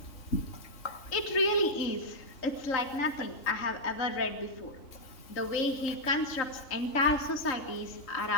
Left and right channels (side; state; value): right; late; 3.5 ms